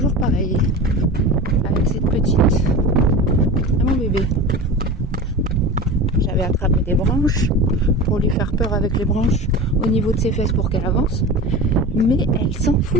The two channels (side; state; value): both; normal; correlation 0.31